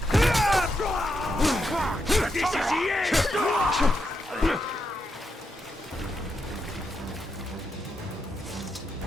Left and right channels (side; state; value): both; normal; correlation 0.83